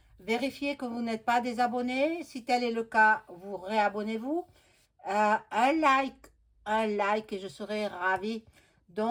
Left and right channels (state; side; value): identical; both; correlation 1.00